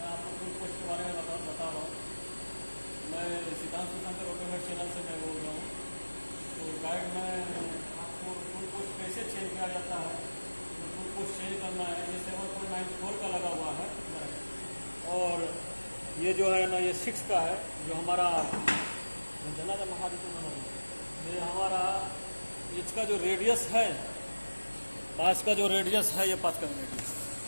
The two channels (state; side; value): inverted; both; correlation -1.00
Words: आपको टूल पोस्ट के बारे में बता रहा हूँ। मैं सिद्धांत शंकर ऑटोमेट चैनल से मैं बोल रहा हूँ। तो गाइड में आपको टूल पोस्ट कैसे चेंज किया जाता है, तो टूल पोस्ट चेंज करना है। ये 7.94 का लगा हुआ है और ये जो है ना ये 6 का है, जो हमारा जना ये हमारा इसका जो रेडियस है, पास का जो रेडियस है, ये पास का रेडियस